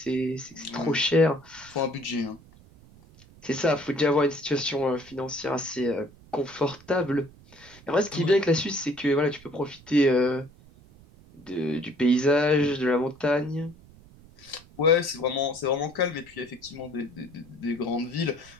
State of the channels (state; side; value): noise; right; rumble, 24 dB below the sound